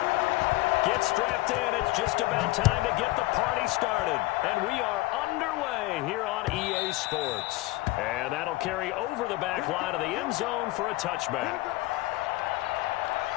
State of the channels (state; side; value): quieter; right; 19.6 dB